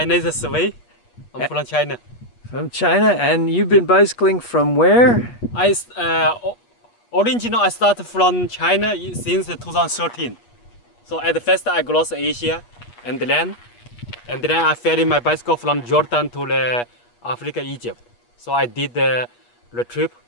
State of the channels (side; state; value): right; late; 8.3 ms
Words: name is Wei. I'm from China. From China, and you've been bicycling from where? Originally I started from China since 2013. So at first I crossed Asia and then I ferried my bicycle from Jordan to Africa, Egypt. So I did the trip